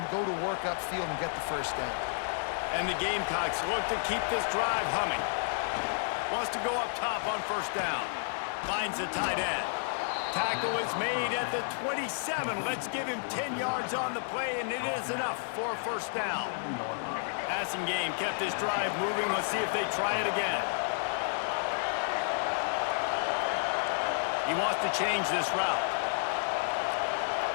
go to work upfield and get the first down. And the Gamecocks look to keep this drive humming. Wants to go up top on first down. Finds the tight end. Tackle is made at the 27. Let's give him 10 yards on the play, and it is enough for a first down. Passing game kept this drive moving. Let's see if they try it again. He wants to change this route.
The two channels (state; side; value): silent; right; digital silence